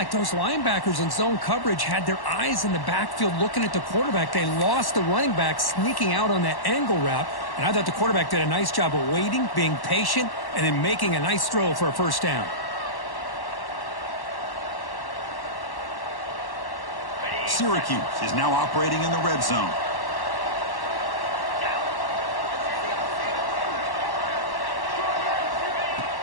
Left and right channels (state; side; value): late; right; 1.1 ms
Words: those linebackers in zone coverage had their eyes in the backfield looking at the quarterback. They lost the running back sneaking out on that angle route. And I thought the quarterback did a nice job of waiting, being patient, and then making a nice throw for a first down. Syracuse is now operating in the red zone.